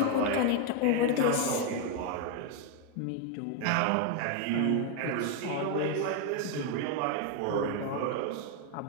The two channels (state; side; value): different; both; correlation 0.01